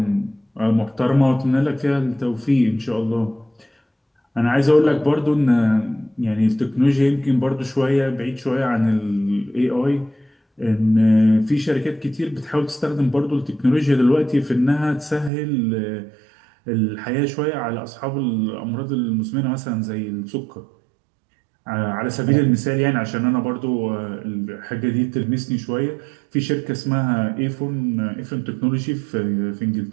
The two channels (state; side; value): drops out; left; at 15.3 s